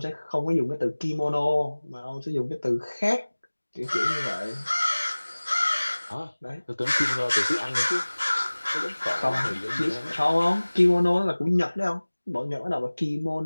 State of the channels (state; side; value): inverted; both; correlation -1.00